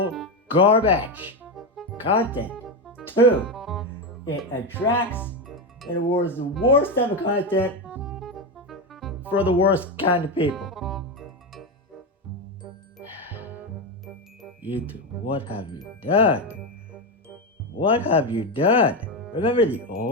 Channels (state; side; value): normal; both; correlation 0.12